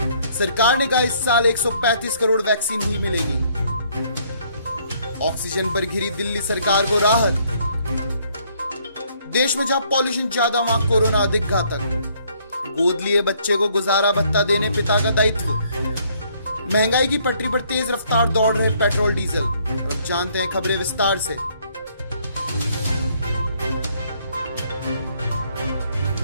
सरकार ने कहा इस साल 135 करोड़ वैक्सीन ही मिलेगी। ऑक्सीजन पर घिरी दिल्ली सरकार को राहत। देश में जहां पॉल्यूशन ज्यादा वहां कोरोना अधिक घातक। गोद लिए बच्चे को गुजारा भत्ता देने पिता का दायित्व। महंगाई की पटरी पर तेज रफ्तार दौड़ रहे पेट्रोल डीजल। अब जानते हैं खबरें विस्तार से।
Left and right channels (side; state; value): both; inverted; correlation -0.66